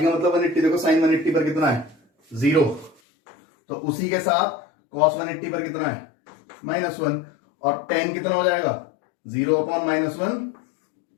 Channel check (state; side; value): drops out; right; at 3.0 s